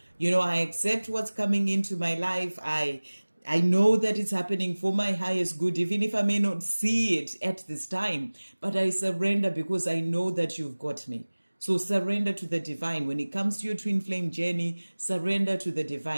I accept what's coming into my life. I know that it's happening for my highest good, even if I may not see it at this time, but I surrender because I know that you've got me. So surrender to the divine. When it comes to your twin flame journey, surrender to the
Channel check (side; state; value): both; inverted; correlation -1.00